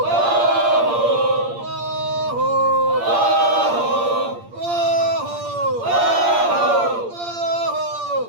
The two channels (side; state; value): left; late; 8.6 ms